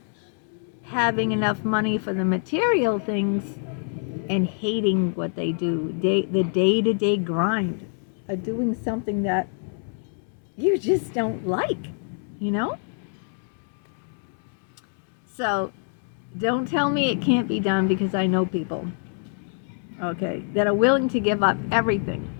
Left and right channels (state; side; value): silent; right; 56 dB below the other